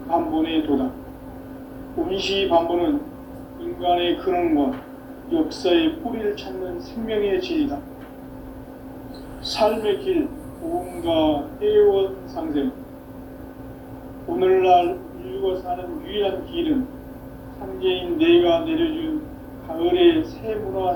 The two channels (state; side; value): identical; both; correlation 1.00